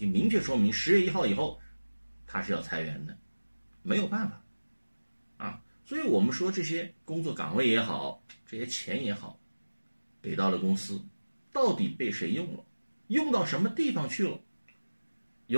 明确说明10月1号以后它是要裁员的，没有办法所以我们说这些工作岗位也好，这些钱也好，给到了公司，到底被谁用了，用到什么地方去了？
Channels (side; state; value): both; inverted; correlation -1.00